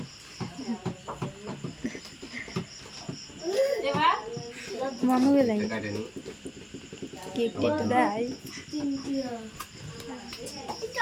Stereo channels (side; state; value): both; identical; correlation 1.00